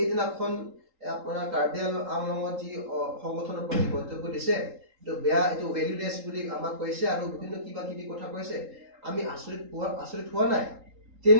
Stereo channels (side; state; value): left; late; 3.8 ms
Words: আপোনাৰ কাৰ্বি আংলঙত যি সংগঠনৰ প্ৰতি মন্তব্য দিছে এইটো বেয়া এইটো ভেলুলেছ বুলি আমাক কৈছে আৰু বিভিন্ন কিবা কিবি কথা কৈছে আমি আচৰিত হোৱা নাই